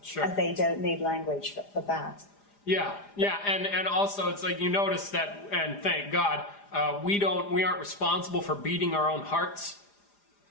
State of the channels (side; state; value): right; late; 4.9 ms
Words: Sure. And they don't need language for that. Yeah, and also it's like, you notice that, and thank God, we aren't responsible for beating our own hearts.